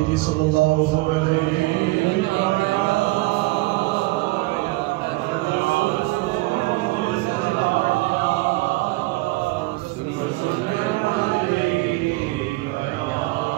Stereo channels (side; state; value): left; quieter; 21.4 dB